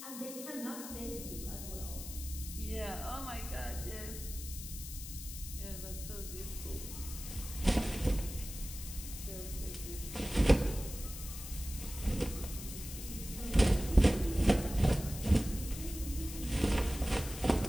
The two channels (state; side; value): noise; left; hiss, 10 dB below the sound